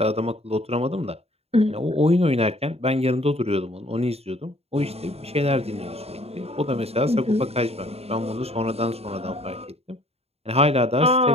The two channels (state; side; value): late; left; 0.30 ms